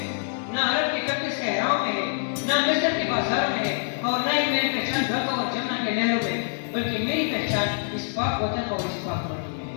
ना अरब के कड़ते सहराओं में है, ना मिस्र के बाजारों में है, और ना ही मेरी पहचान ढाका और जमुना के नहरों में, बल्कि मेरी पहचान इस पाक वतन और इस पाक माटी में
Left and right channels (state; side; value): silent; right; 61 dB below the other